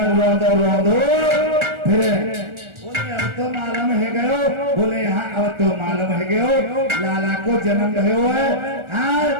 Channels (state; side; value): late; left; 1.4 ms